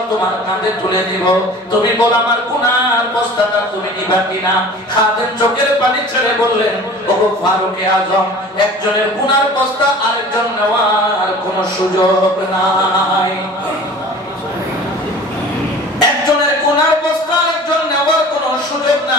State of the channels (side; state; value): both; normal; correlation 0.43